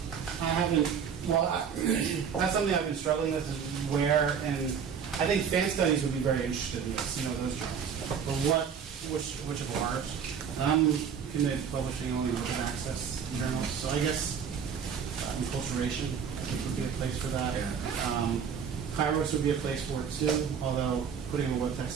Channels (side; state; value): left; quieter; 7.2 dB